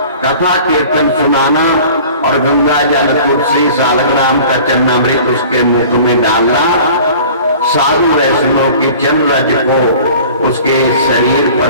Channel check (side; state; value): both; inverted; correlation -0.45